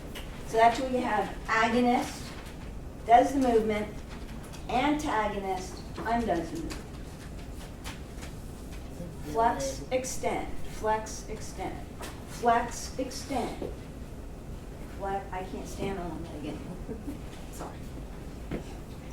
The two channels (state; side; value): identical; both; correlation 1.00